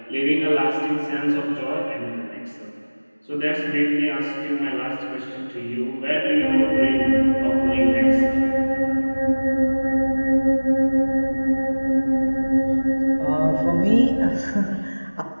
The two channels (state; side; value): inverted; both; correlation -1.00